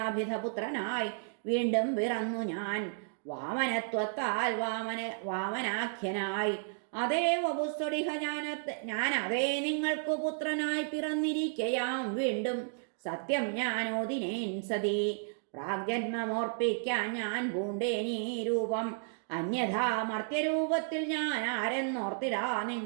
വീണ്ടും പിറന്നു ഞാൻ വാമനത്വത്താൽ വാമനാഖ്യനായി അതേ വപുസ്തുടിഹ ഞാൻ അതേ നിങ്ങൾക്ക് പുത്രനായി പിറന്നിരിക്കയാം വീണ്ടും സത്യം ഞാനോദിനേൻ സതി പ്രാഗ്ജന്മമോർപ്പിക്കാൻ ഞാൻ പൂണ്ടേനീ രൂപം അന്യഥാ മർത്യരൂപത്തിൽ ഞാൻ ആരെന്നോർത്തിടാ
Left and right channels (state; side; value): silent; left; digital silence